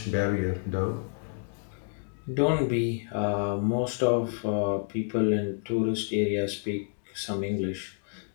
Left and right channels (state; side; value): silent; right; digital silence